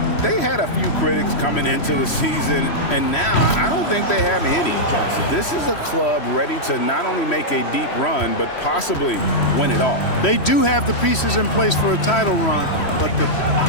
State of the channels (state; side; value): late; right; 3.1 ms